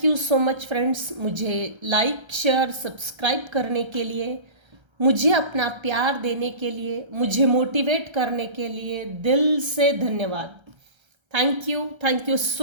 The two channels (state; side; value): late; left; 1.3 ms